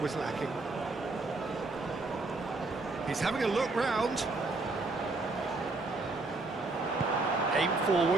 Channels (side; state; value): left; quieter; 3.3 dB